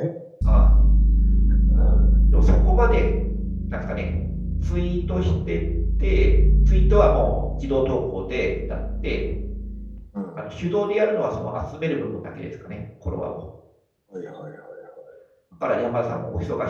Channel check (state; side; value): identical; both; correlation 1.00